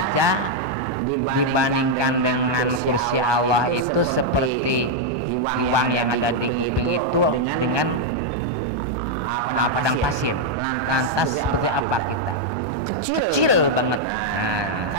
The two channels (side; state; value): left; late; 1.2 ms